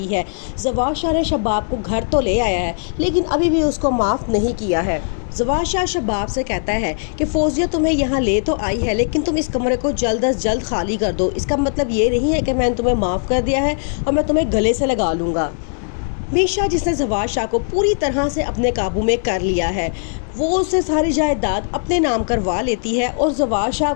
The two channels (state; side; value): silent; right; 62 dB below the other